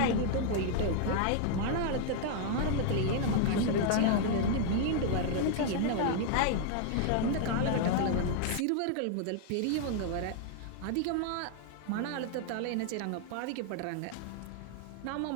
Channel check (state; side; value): different; both; correlation 0.00